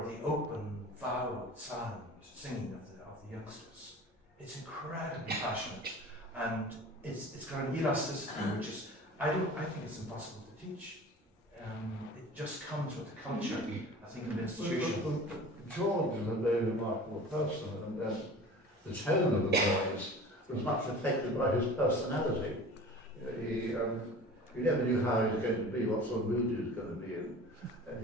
the open, vowed, silent singing of the youngsters. It's incredibly passionate, and it's got an elasticity which is, I think it's impossible to teach. It just comes with the culture, I think, of the institution. George is a very remarkable person, and the tone of the voice was much affected by his personality. You never knew how he was going to be, what sort of mood he was going to be in.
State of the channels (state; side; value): normal; both; correlation 0.40